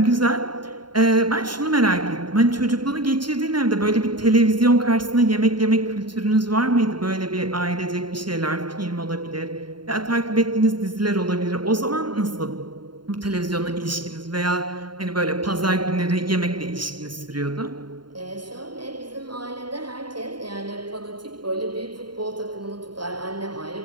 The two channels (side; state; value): left; late; 0.72 ms